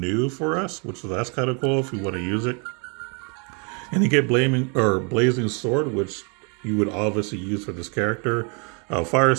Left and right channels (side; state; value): left; quieter; 35.3 dB